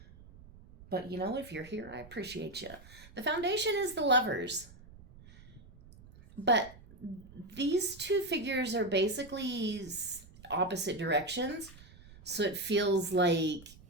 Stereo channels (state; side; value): noise; right; rumble, 21 dB below the sound